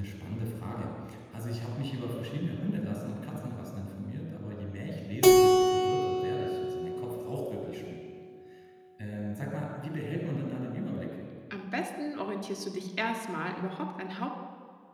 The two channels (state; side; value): identical; both; correlation 1.00